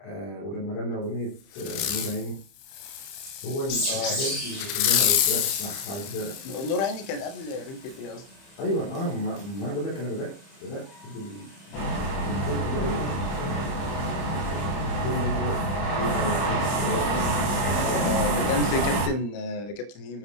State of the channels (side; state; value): right; late; 30 ms